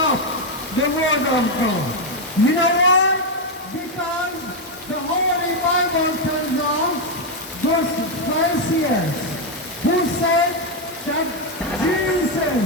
the word of God. You know why? Because the Holy Bible tells us those Pharisees who said that Jesus,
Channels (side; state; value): both; normal; correlation 0.03